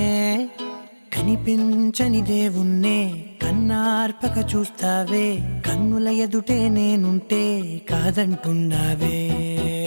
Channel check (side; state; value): both; inverted; correlation -1.00